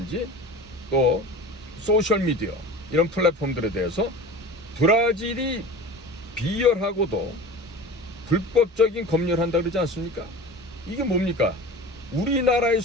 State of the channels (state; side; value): normal; both; correlation 0.35